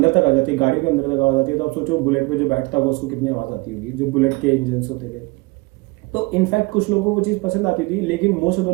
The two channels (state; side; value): quieter; left; 25.0 dB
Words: तक आ जाती है, गाड़ी के अंदर तक आवाज आती है। तो आप सोचो बुलेट पे जो बैठता होगा उसको कितनी आवाज आती होगी, जो बुलेट के इंजन होते थे। तो इनफैक्ट कुछ लोगों को वो चीज पसंद आती थी, लेकिन मोस्ट ऑफ द